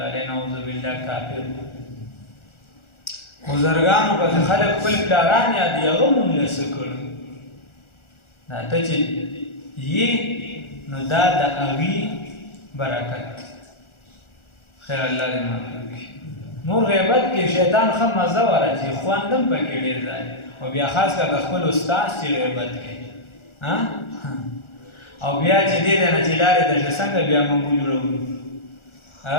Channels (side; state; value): right; late; 1.4 ms